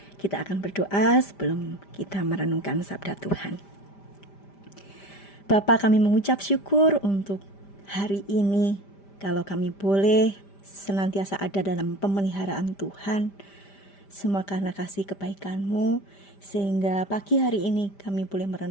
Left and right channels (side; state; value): right; late; 5.1 ms